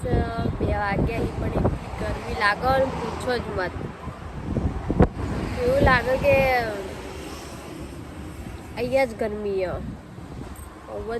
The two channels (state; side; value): identical; both; correlation 1.00